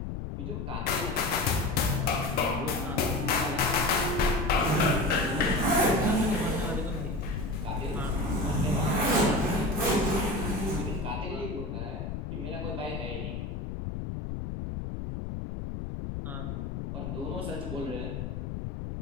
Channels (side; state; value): left; noise; rumble, 5 dB below the sound